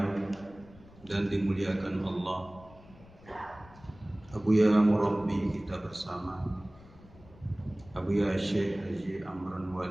dan dimuliakan Allah, Abuya Murabbi kita bersama, Abuya Syekh Haji Amran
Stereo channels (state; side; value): noise; left; rumble, 23 dB below the sound